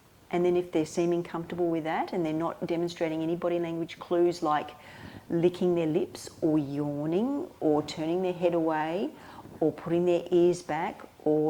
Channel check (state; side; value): identical; both; correlation 1.00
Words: And then if they're seeming comfortable with that and they're not demonstrating any body language clues like licking their lips or yawning or turning their head away or putting their ears back